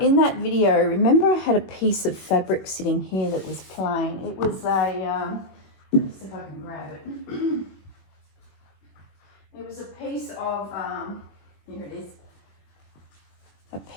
that video, remember I had a piece of fabric sitting here that was plain. It was a, let's see if I can grab it. It was a piece of, here it is, a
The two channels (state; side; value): late; right; 21 ms